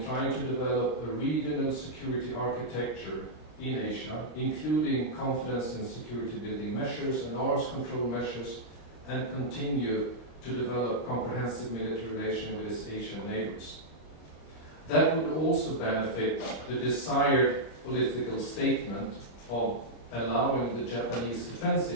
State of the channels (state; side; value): late; right; 26 ms